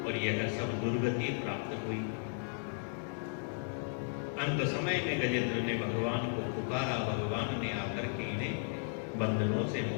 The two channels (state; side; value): silent; right; digital silence